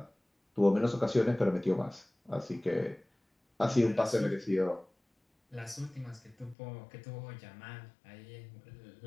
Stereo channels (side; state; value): right; drops out; at 6.6 s